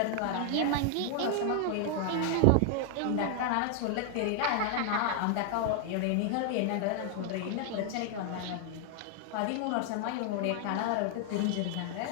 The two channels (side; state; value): both; different; correlation 0.00